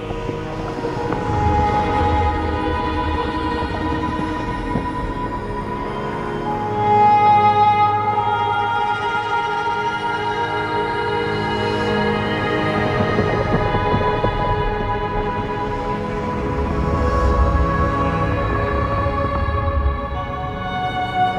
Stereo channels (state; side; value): identical; both; correlation 1.00